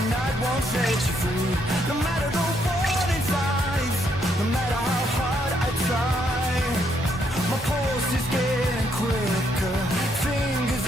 night won't set you free. No matter the warning signs, no matter how hard I try, my pulse is getting quicker, fingers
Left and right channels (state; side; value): normal; both; correlation 0.73